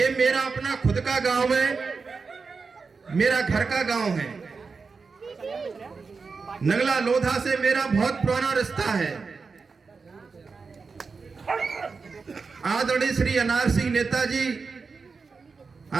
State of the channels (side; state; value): left; quieter; 4.8 dB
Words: मेरा अपना खुद का गांव है, मेरा घर का गांव है। नंगला लोधा से मेरा बहुत पुराना रिश्ता है। आदरणीय श्री अनार सिंह नेताजी,